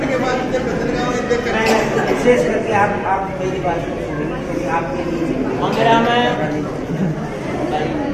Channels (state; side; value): identical; both; correlation 1.00